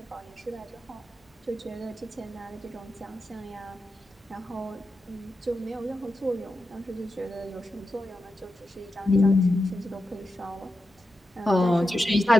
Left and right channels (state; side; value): normal; both; correlation 0.89